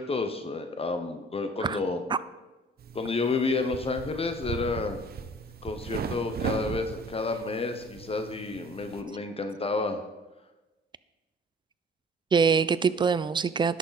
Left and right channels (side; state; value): both; normal; correlation 0.51